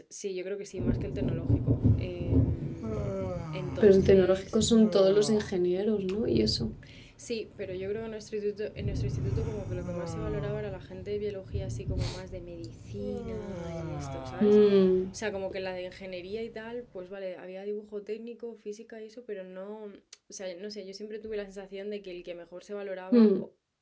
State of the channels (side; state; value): both; identical; correlation 1.00